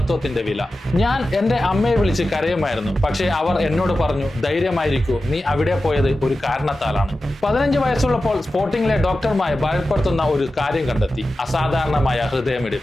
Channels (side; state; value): both; normal; correlation 0.93